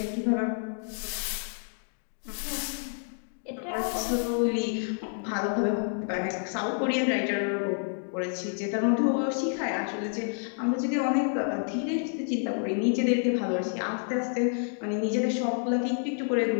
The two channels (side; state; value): right; silent; 59 dB below the other